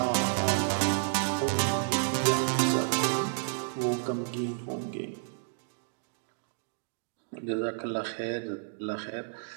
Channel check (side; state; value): left; silent; digital silence